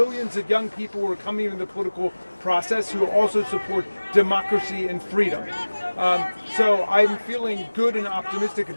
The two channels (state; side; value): inverted; both; correlation -1.00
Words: of young people who are coming into the political process who also support democracy and freedom. So I'm feeling good and optimistic